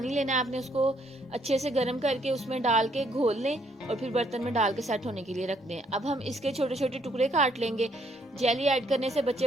लेना है आपने, उसको अच्छे से गर्म करके उसमें डाल के घोल लें और फिर बर्तन में डाल के सेट होने के लिए रख दें। अब हम इसके छोटे छोटे टुकड़े काट लेंगे। जेली ऐड करने से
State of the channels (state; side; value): normal; both; correlation 0.69